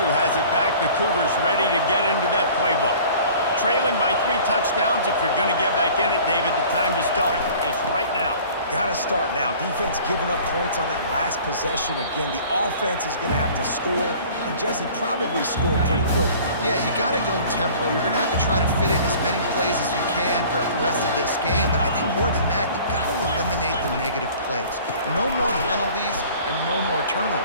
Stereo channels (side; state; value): both; inverted; correlation -0.47